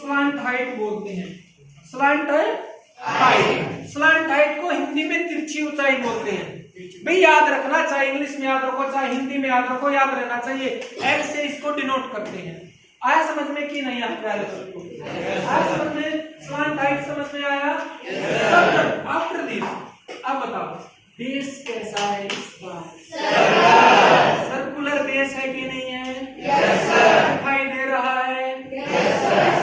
हाइट बोलते हैं। स्लांट हाइट, स्लांट हाइट को हिंदी में तिरछी ऊंचाई बोलते हैं। भाई याद रखना, चाहे इंग्लिश में याद रखो चाहे हिंदी में याद रखो, याद रहना चाहिए। एल से इसको डिनोट करते हैं। आया समझ में कि नहीं आया प्यारे दोस्तों? आया समझ में? स्लांट हाइट समझ में आया? आफ्टर दिस अब बताओ बेस कैसा है इसका? सर्कुलर बेस है कि नहीं है? दिखाई दे रहा है?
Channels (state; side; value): identical; both; correlation 1.00